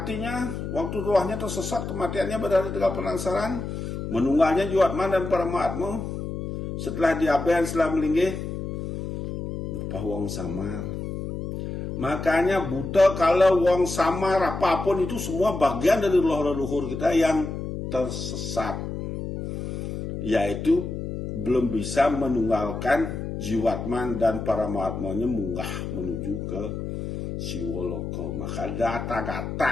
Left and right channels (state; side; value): noise; left; hum, 6 dB below the sound